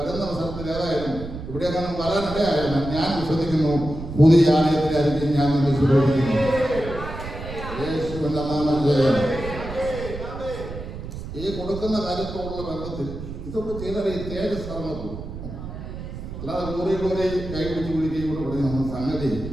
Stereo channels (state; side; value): noise; right; rumble, 9 dB below the sound